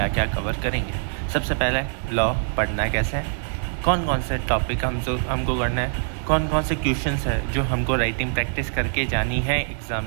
क्या कवर करेंगे। सबसे पहले लॉ पढ़ना कैसे है, कौन कौन से टॉपिक हमको करना है, कौन कौन से क्वेश्चंस है जो हमको राइटिंग प्रैक्टिस करके जानी है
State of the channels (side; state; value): left; silent; digital silence